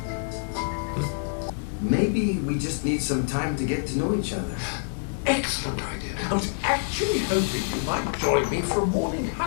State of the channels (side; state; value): right; silent; digital silence